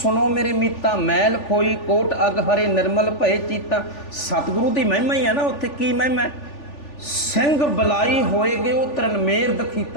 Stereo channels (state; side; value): late; right; 3.4 ms